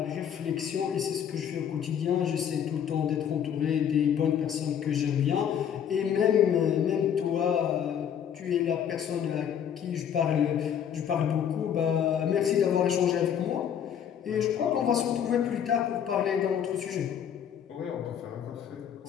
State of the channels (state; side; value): quieter; right; 8.7 dB